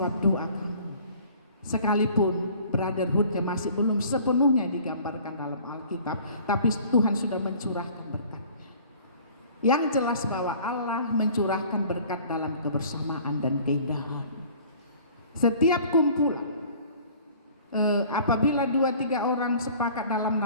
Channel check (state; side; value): inverted; both; correlation -0.50